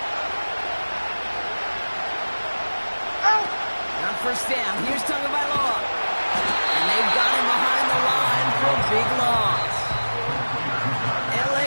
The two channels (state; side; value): inverted; both; correlation -1.00